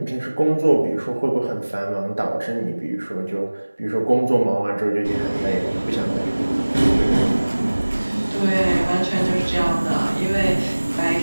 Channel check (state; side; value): inverted; both; correlation -1.00